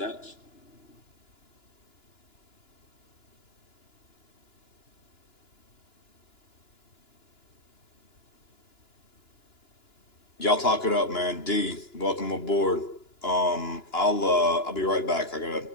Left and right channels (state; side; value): late; right; 2.9 ms